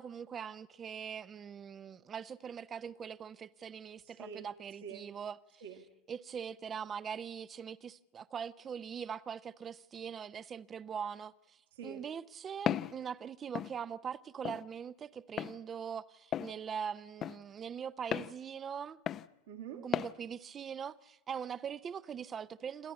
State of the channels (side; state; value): both; normal; correlation 0.64